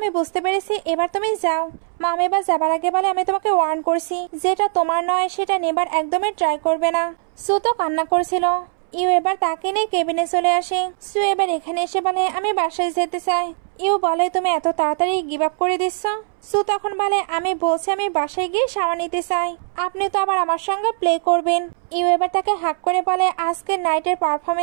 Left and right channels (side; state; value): left; silent; 65 dB below the other